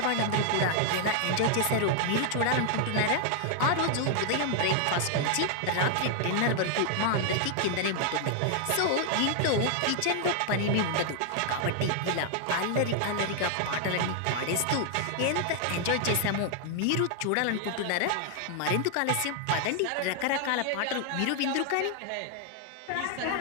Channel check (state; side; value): different; both; correlation 0.00